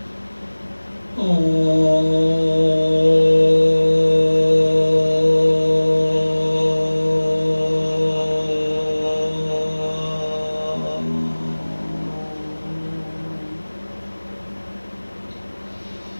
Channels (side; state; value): both; inverted; correlation -1.00